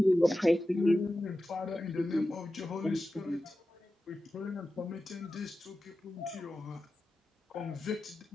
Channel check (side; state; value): both; normal; correlation 0.93